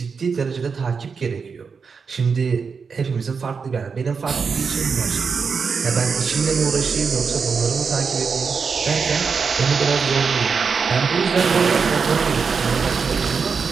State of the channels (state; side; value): quieter; left; 5.5 dB